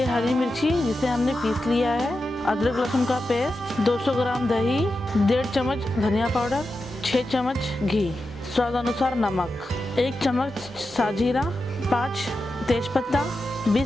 हरी मिर्ची जिसे हमने पीस लिया है, अदरक लहसुन का पेस्ट, 200 ग्राम दही, 1.5 चम्मच धनिया पाउडर, 6 चम्मच घी, स्वाद अनुसार नमक, 1 चम्मच साजीरा, 5 तेजपत्ता,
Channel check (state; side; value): normal; both; correlation 0.90